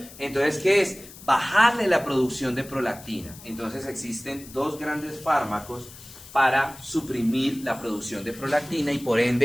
Entonces, ¿qué es? Bajarle la producción de prolactina. Entonces existen dos grandes fármacos para suprimir la producción de prolactina y por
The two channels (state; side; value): noise; left; hiss, 18 dB below the sound